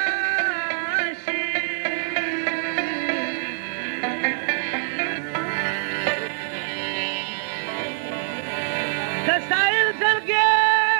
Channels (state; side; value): silent; left; 57 dB below the other